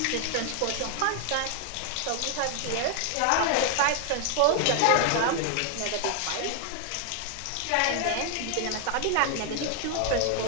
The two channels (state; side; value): different; both; correlation 0.00